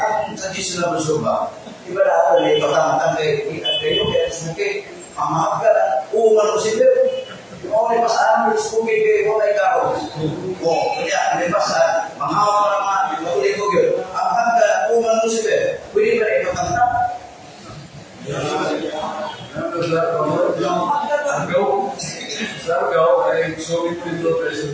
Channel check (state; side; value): identical; both; correlation 1.00